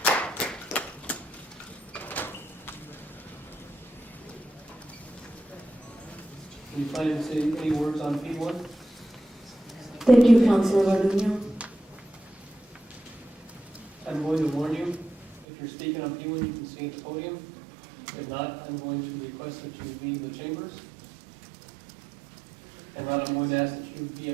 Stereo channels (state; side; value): drops out; left; at 15.5 s